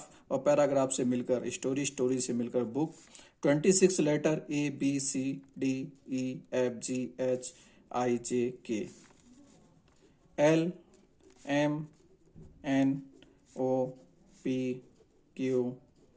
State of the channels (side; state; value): both; identical; correlation 1.00